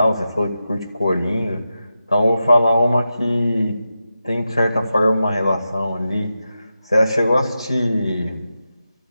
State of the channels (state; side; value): inverted; both; correlation -0.90